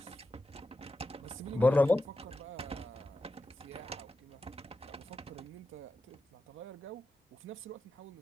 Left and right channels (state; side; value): normal; both; correlation 0.90